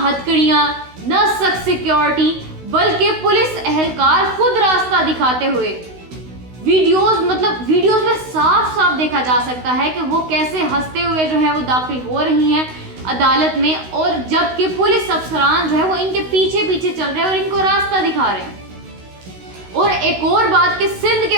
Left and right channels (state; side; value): late; left; 16 ms